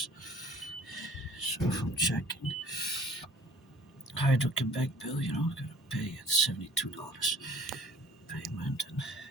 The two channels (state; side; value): normal; both; correlation 0.51